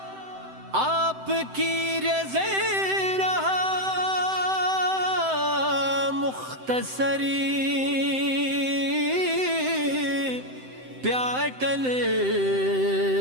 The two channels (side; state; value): left; late; 7.8 ms